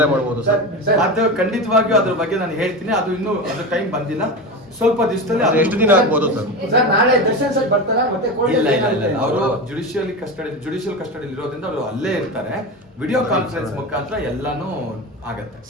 ಮಾಡಬಹುದು sir? ಅದು ಖಂಡಿತವಾಗಿಯೂ ಅದ್ರ ಬಗ್ಗೆ ನಾನು ಹೇಳ್ತೀನಿ. ಅದು ಇನ್ನೂ ಅದ್ರ ಟೈಮ್ ಬಂದಿಲ್ಲ. ಸ್ವಲ್ಪ ದಿವಸದಲ್ಲಿ ಎಷ್ಟು ದಿನ ಆಗ್ಬೋದು ಸರ್? ನಾಳೆ ದರ್ಶನ್ ಸರ್ ಬರ್ತಾರಾ? ಮತ್ತೆ ಇಲ್ಲ ಅವರು ಜುಡಿಷಿಯಲ್ ಕಸ್ಟಡಿ ಇರೋದ್ರಿಂದ ಅವರು ಅಲ್ಲೇ ಇರ್ತಾರೆ. ವಿಡಿಯೋ ಕಾನ್ಫರೆನ್ಸ್ ಮುಖಾಂತರ ಎಲ್ಲಾನು ಆಗತ್ತೆ.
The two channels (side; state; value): both; normal; correlation 0.23